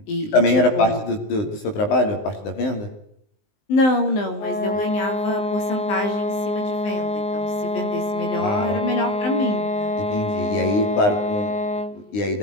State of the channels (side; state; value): right; late; 19 ms